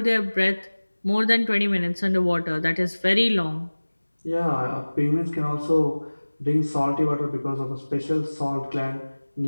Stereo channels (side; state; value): both; inverted; correlation -1.00